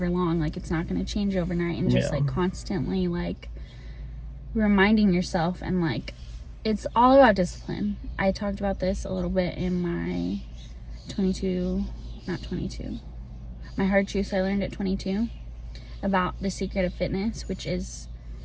long, like it's not gonna change overnight, and just like constantly like reminding yourself. And like it's all about discipline. I talked about this a little bit in my my hard truths I learned at 22 about the secret of fitness, which is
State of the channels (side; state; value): both; identical; correlation 1.00